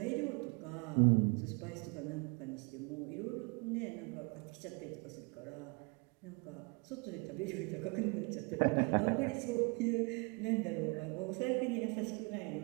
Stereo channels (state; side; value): quieter; left; 31.7 dB